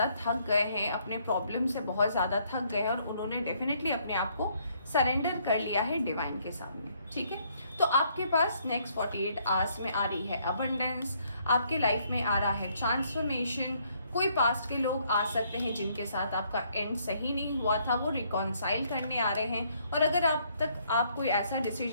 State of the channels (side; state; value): both; inverted; correlation -0.68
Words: थक गए हैं, अपने प्रॉब्लम से बहुत ज़्यादा थक गए हैं और उन्होंने डेफिनेटली अपने आप को सरेंडर कर लिया है डिवाइन के सामने। ठीक है, तो आपके पास नेक्स्ट 48 आवर्स में आ रही है अबंडेंस, आपके लाइफ में आ रहा है ट्रांसफॉर्मेशन। कोई पास्ट के लोग आ सकते हैं जिनके साथ आपका एंड सही नहीं हुआ था, वो रिकॉन्साइल करने आ रहे हैं। और अगर आप कोई ऐसा